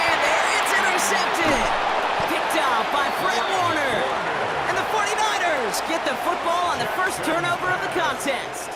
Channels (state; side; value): identical; both; correlation 1.00